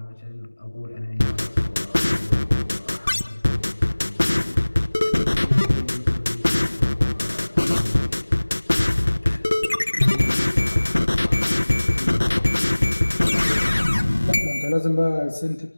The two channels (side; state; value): both; inverted; correlation -1.00